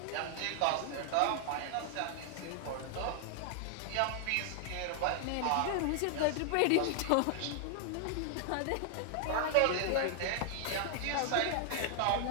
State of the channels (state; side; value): different; both; correlation 0.00